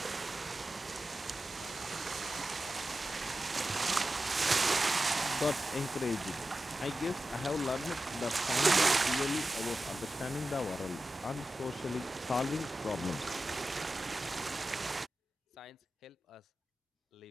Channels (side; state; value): both; normal; correlation 0.93